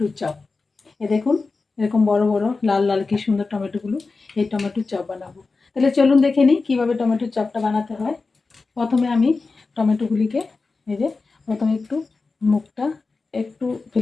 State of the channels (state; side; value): quieter; right; 4.0 dB